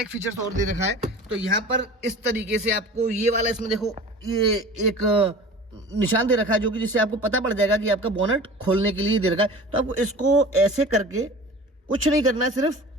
फीचर्स और दे रखा है। तो यहाँ पर इस तरीके से आपको ये वाला, इसमें देखो ये एक निशान दे रखा है, जो कि जिससे आपको पता पड़ जाएगा कि आपका बोनट खोलने के लिए दे रखा है। तो आपको इसको ऐसे करके कुछ नहीं करना है सिर्फ,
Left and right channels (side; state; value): both; normal; correlation 0.39